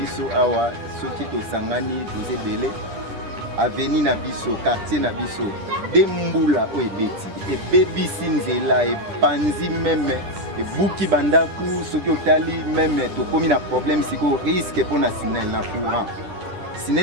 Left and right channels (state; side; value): late; left; 10 ms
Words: Avenue na biso, quartier na biso, dembula o ebeti, ebebisi nzela, epanzi meme, ebuki bandaku, soki otali meme, tokomi na problème siko risque pour na SNEL na courant.